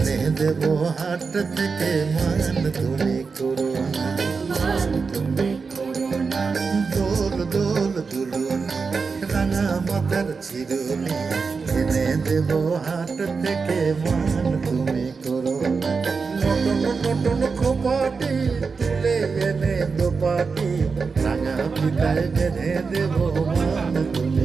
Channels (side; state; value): left; quieter; 4.9 dB